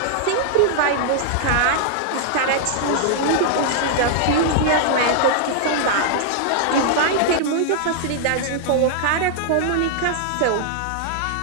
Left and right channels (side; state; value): both; different; correlation -0.01